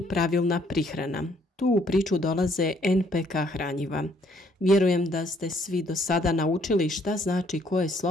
pravilna prihrana. Tu u priču dolaze NPK hranjiva. Vjerujem da ste svi do sada naučili šta znači koje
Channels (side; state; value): both; normal; correlation 0.66